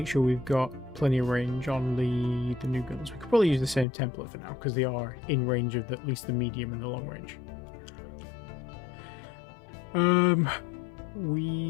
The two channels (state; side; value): drops out; right; at 3.9 s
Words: sure we've got plenty of range on the new guns. We could probably use the same template for now because they are in range of at least the medium and the long range.